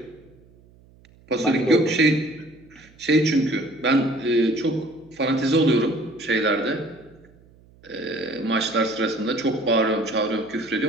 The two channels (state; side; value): noise; right; hum, 28 dB below the sound